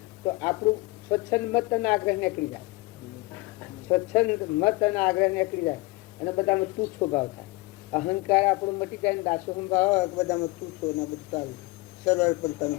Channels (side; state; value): right; quieter; 22.6 dB